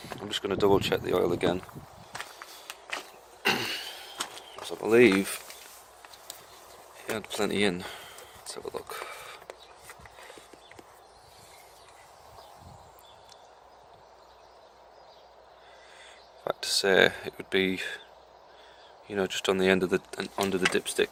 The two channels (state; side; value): identical; both; correlation 1.00